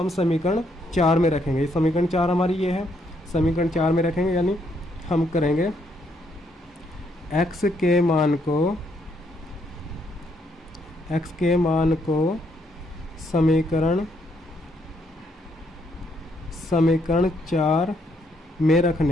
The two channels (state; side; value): normal; both; correlation 0.73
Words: समीकरण 4 में रखेंगे। समीकरण 4 हमारी ये है, समीकरण 4 में रखेंगे, यानी हम करेंगे x के मान को समीकरण 4 में